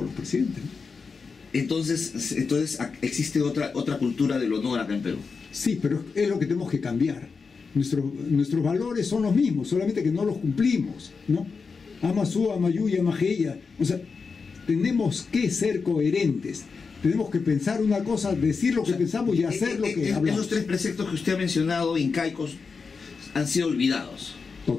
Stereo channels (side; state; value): right; quieter; 5.0 dB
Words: los presidentes, ¿no? Entonces existe otra cultura del honor acá en Perú. Sí, pero es lo que tenemos que cambiar. Nuestros valores son los mismos, solamente que no los cumplimos, ¿no? Amasú, Amayuya, Amajeya. O sea, tenemos que ser coherentes. Tenemos que pensar una cosa, decir lo que pensamos y hacer lo que hablamos. Esos tres preceptos que usted ha mencionado, incaicos, han sido olvidados.